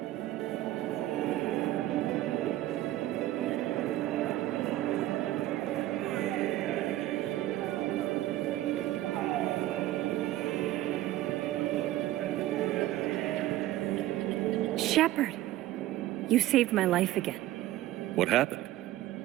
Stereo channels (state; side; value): quieter; left; 15.0 dB